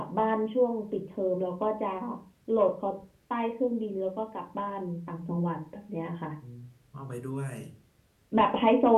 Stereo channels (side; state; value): both; identical; correlation 1.00